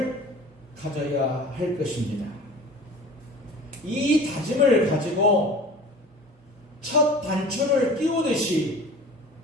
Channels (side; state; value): both; normal; correlation 0.41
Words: 가져야 할 것입니다. 이 다짐을 가지고 첫 단추를 끼우듯이